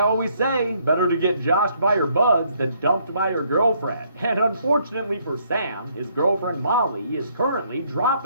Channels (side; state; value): both; inverted; correlation -0.69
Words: always say, better to get joshed by your buds than dumped by your girlfriend. And unfortunately for Sam, his girlfriend Molly is currently